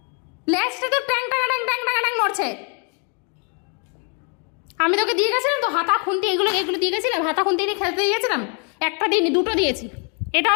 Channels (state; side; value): quieter; right; 38.8 dB